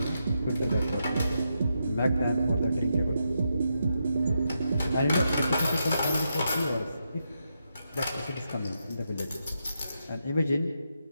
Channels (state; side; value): inverted; both; correlation -0.83